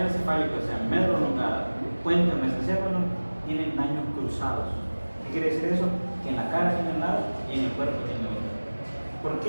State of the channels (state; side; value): inverted; both; correlation -1.00